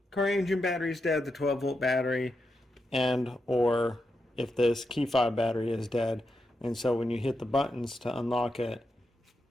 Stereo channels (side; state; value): both; normal; correlation 0.86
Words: car engine battery is dead, the 12-volt battery, or if this key fob battery is dead. And so when you hit the buttons to unlock it